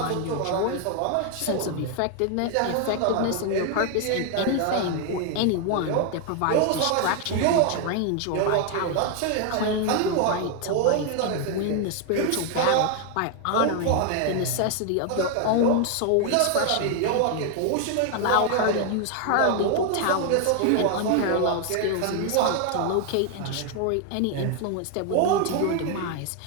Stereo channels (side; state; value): both; different; correlation 0.00